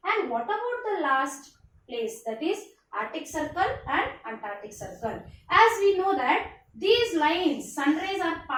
And what about the last place, that is Arctic Circle and Antarctic Circle? As we know that these lines, sun rays are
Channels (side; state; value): both; identical; correlation 1.00